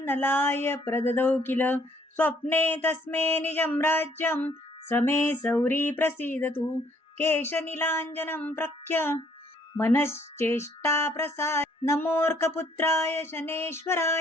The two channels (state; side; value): normal; both; correlation 0.64